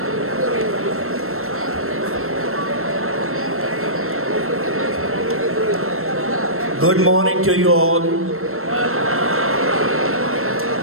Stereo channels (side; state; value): left; late; 0.62 ms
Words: Good morning to you all.